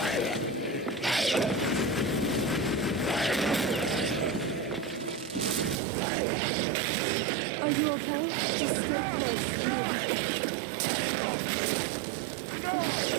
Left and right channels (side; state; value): left; drops out; at 5.8 s